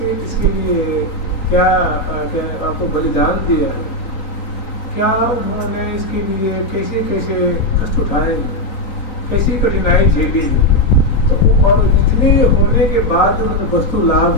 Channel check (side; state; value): right; late; 4.0 ms